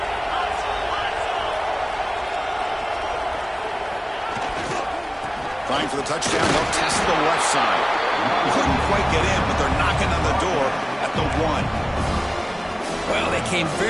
Trying for the touchdown, they'll test the left side. Couldn't quite get in, but they're knocking on the door at the 1. Well, they came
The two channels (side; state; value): both; identical; correlation 1.00